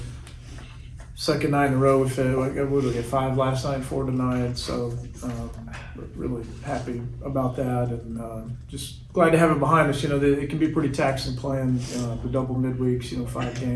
Second night in a row, we get 5 last night, 4 tonight. So really happy about that, and just glad to have it behind us. It can be pretty taxing playing the double midweeks. 5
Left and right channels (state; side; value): identical; both; correlation 1.00